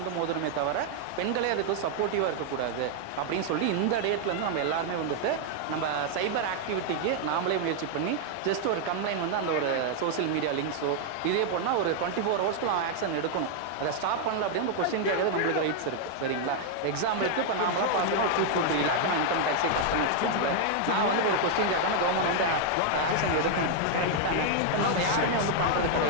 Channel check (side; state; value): both; different; correlation 0.00